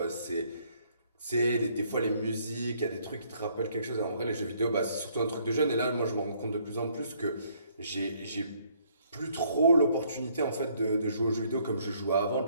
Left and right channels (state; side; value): inverted; both; correlation -0.66